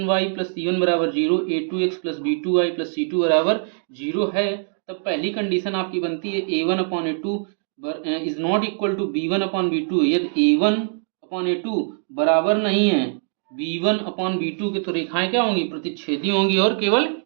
plus c1 बराबर 0, a2x plus b2y plus c2 बराबर 0 है, तब पहली कंडीशन आपकी बनती है a1 upon a2 is not equal to b1 upon b2। यदि a1 अपॉन a2 बराबर नहीं है b1 अपॉन b2 के, तो रेखाएं क्या होंगी? प्रतिच्छेदी होंगी और केवल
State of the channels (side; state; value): left; silent; digital silence